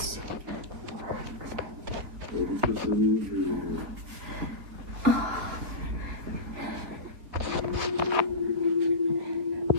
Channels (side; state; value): left; late; 3.8 ms